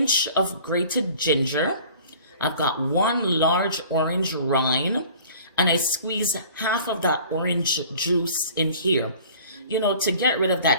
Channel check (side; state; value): both; inverted; correlation -0.48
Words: of grated ginger. I've got 1 large orange rind. And I squeeze half of that orange juice in here, you know, to get rid of